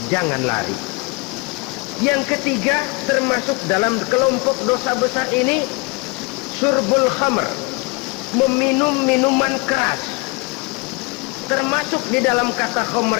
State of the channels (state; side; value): quieter; right; 28.3 dB